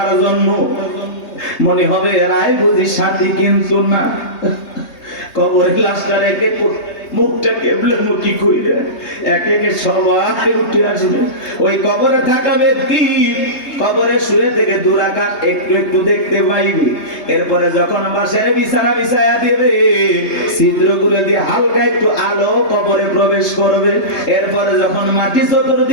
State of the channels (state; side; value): late; right; 3.3 ms